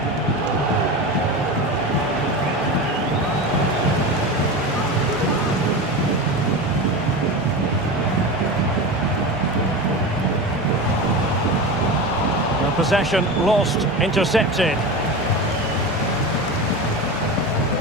Possession lost, intercepted.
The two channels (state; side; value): noise; right; hum, 17 dB below the sound